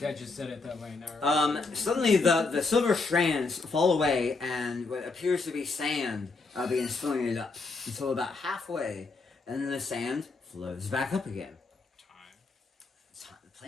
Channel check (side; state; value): right; quieter; 3.9 dB